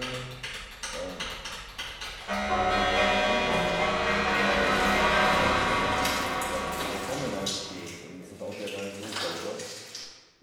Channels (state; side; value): identical; both; correlation 1.00